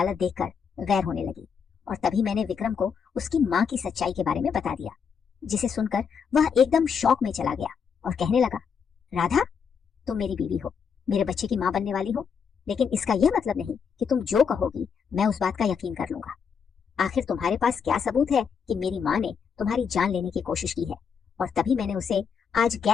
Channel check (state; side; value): quieter; right; 6.6 dB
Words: देखकर गैर होने लगी और तभी मैंने विक्रम को उसकी माँ की सच्चाई के बारे में बता दिया, जिसे सुनकर वह एकदम शौक में चला गया और कहने लगा, राधा, तुम मेरी बीवी हो, मेरे बच्चे की माँ बनने वाली हो, लेकिन इसका यह मतलब नहीं कि तुम जो कहोगी मैं उस बात का यकीन कर लूंगा। आखिर तुम्हारे पास क्या सबूत है कि मेरी माँ ने तुम्हारी जान लेने की कोशिश की है? और तभी मैंने उसे आज